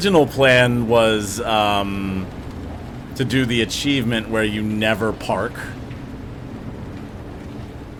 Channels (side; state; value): both; identical; correlation 1.00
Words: plan was to do the achievement where you never park.